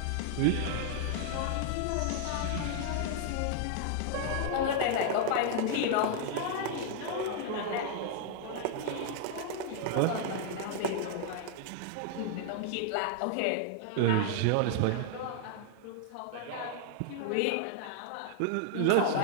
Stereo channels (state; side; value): different; both; correlation 0.00